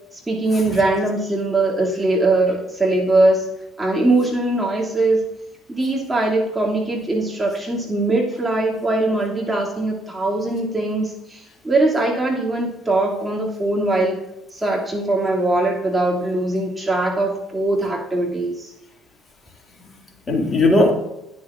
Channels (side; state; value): both; normal; correlation 0.73